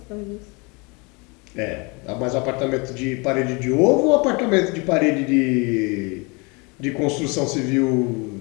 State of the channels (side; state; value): right; quieter; 29.3 dB